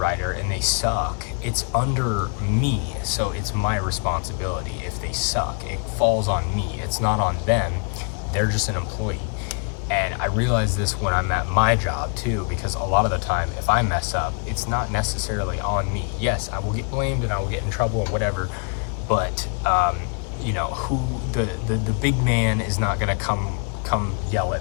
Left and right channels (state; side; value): quieter; right; 35.8 dB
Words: and they suck, it's under me, so it's my responsibility. If they suck, it falls on me. It's not on them. They're just an employee. And I realize this when I'm at my job too, because a lot of the time, if I mess up, it's not necessarily on me. Yes, I will get blamed and I will get in trouble and whatever, but the big man is not gonna come yell